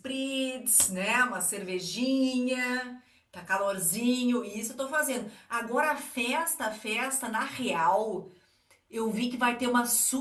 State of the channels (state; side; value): identical; both; correlation 1.00